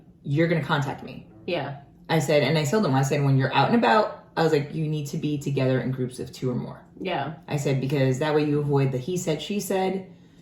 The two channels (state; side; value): identical; both; correlation 1.00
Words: You're gonna contact me. Yeah. I said, and I told them, when you're out and about, I was you need to be together in groups of 2 or more. Yeah. I said, because that way you avoid the he said, she said.